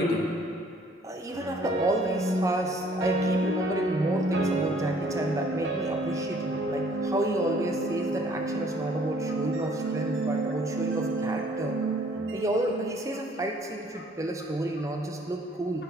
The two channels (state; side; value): normal; both; correlation 0.59